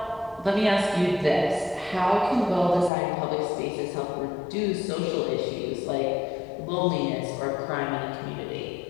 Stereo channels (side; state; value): right; drops out; at 2.9 s